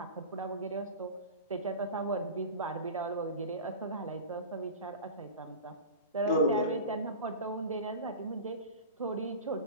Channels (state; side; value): inverted; both; correlation -0.32